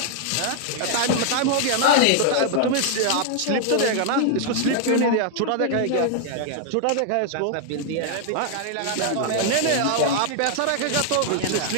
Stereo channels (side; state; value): both; different; correlation 0.00